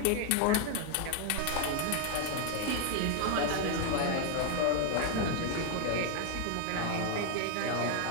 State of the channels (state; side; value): different; both; correlation 0.00